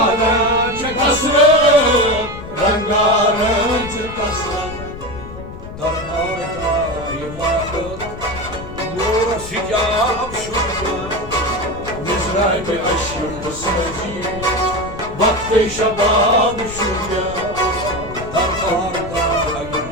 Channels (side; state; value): left; noise; rumble, 12 dB below the sound